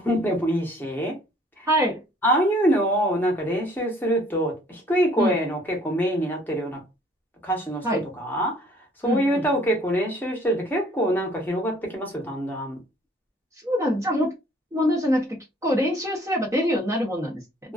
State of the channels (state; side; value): normal; both; correlation 0.57